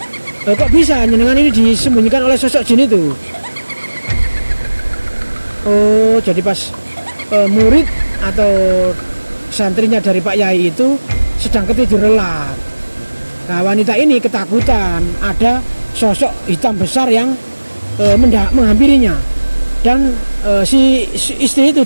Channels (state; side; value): inverted; both; correlation -1.00